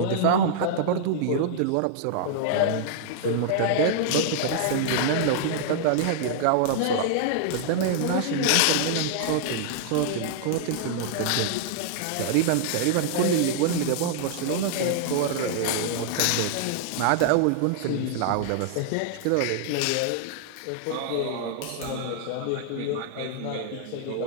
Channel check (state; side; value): different; both; correlation -0.01